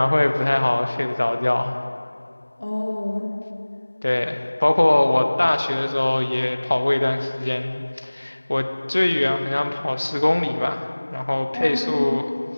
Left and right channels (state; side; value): inverted; both; correlation -1.00